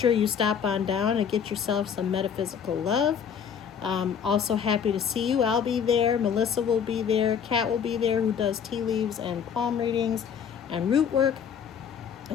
you stop on down and get yourself some metaphysical love. Also happy to see you. I'll be there. Melissa will be there. Kat will be there, who does tea leaves and palm readings and root work.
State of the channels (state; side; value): quieter; right; 7.5 dB